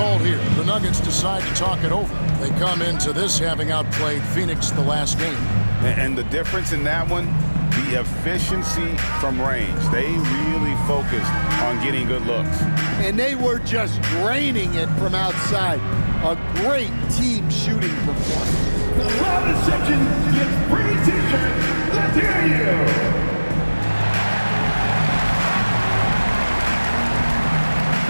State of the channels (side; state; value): both; inverted; correlation -1.00